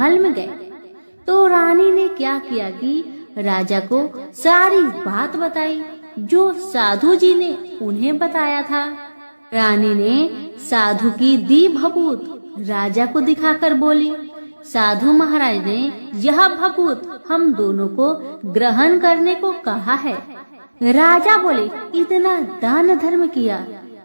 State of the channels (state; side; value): inverted; both; correlation -1.00